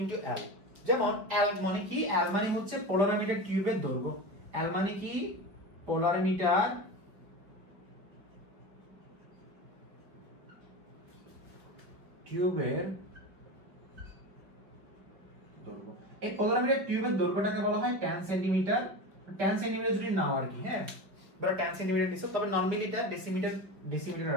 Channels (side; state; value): left; late; 5.4 ms